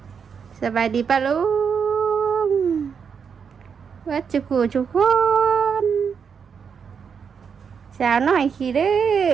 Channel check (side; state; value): left; quieter; 6.6 dB